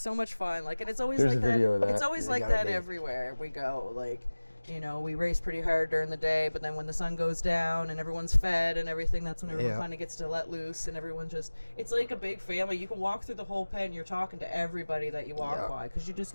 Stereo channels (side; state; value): both; inverted; correlation -1.00